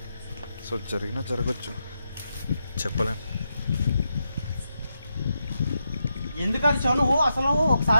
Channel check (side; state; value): both; inverted; correlation -0.85